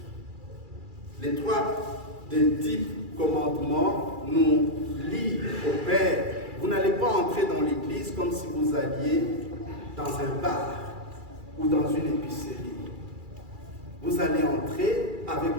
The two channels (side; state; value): left; late; 2.3 ms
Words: Les 3 des 10 commandements nous lient au Père. Vous n'allez pas entrer dans l'église comme si vous alliez dans un bar ou dans une épicerie. Vous allez entrer avec